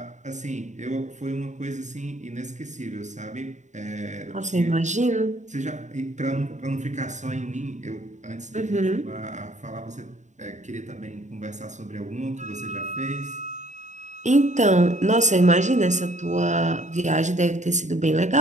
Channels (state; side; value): late; left; 0.35 ms